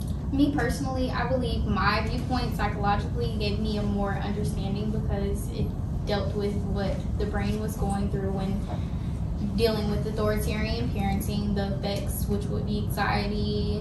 Me personally, I believe my viewpoint psychologically gave me a more understanding because it dealt with what the brain was going through when dealing with authoritarian parenting, the effects, which would be anxiety,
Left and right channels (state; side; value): identical; both; correlation 1.00